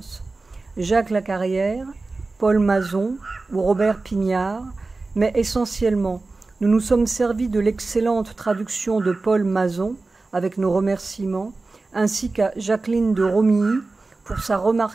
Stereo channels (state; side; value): quieter; left; 3.5 dB